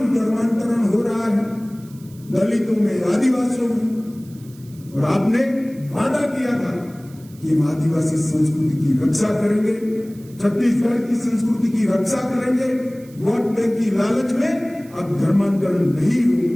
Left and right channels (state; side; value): noise; right; hiss, 26 dB below the sound